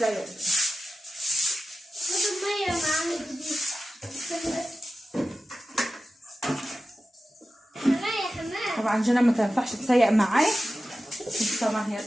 المية معانا جديد. طبعا جنى ما تنفعش تسيق معايا، طبعا هي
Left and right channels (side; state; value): both; normal; correlation 0.94